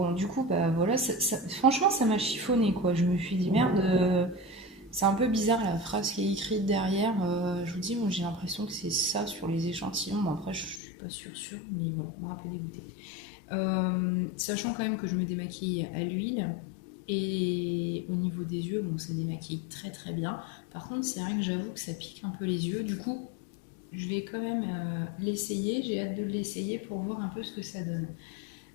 du coup, voilà, franchement, ça m'a chiffonné, quoi. Je me suis dit, merde... c'est un peu bizarre la phrase qui est écrite derrière. Je vous dis, moi j'ai l'impression que c'est ça sur les échantillons. Bon, après, je suis pas sûre, mais voilà, moi un peu dégoûtée. Sachant quand même que je me démaquille à l'huile et au niveau des yeux, bon, ça démaquille très très bien. Par contre, c'est vrai que j'avoue que ça pique un peu les yeux. Du coup, je vais quand même l'essayer. J'ai hâte de l'essayer pour voir un peu ce que ça donne.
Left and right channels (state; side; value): drops out; right; at 10.8 s